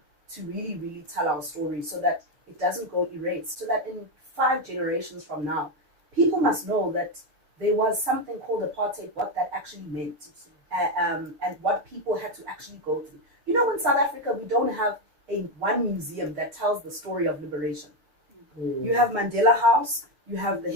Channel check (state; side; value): late; left; 6.8 ms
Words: to really, really tell our story so that it doesn't go erased, so that in 5 generations from now, people must know that there was something called apartheid, what that actually meant, and what people had to actually go through. In South Africa, we don't have one museum that tells the story of liberation. You have Mandela House, you have the